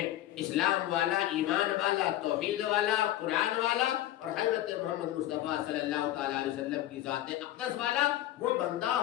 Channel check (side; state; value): right; quieter; 13.9 dB